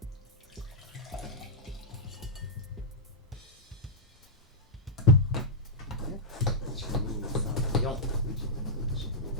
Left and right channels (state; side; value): normal; both; correlation -0.07